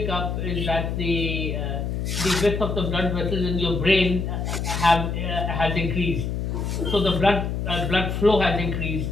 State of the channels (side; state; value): left; noise; hum, 2 dB below the sound